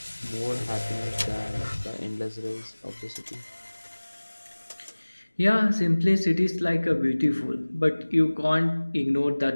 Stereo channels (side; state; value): both; inverted; correlation -1.00